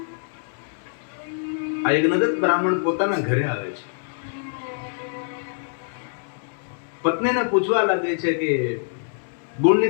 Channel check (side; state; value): right; silent; digital silence